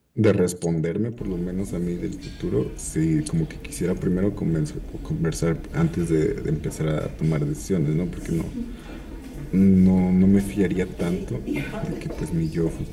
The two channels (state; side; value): identical; both; correlation 1.00